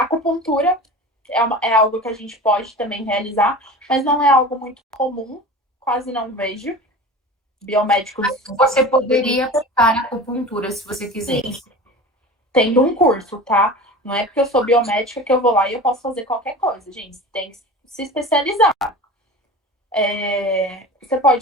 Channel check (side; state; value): both; normal; correlation 0.35